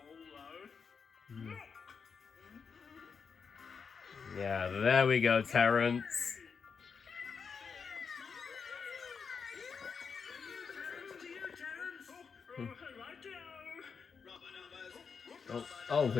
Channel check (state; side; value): quieter; right; 5.8 dB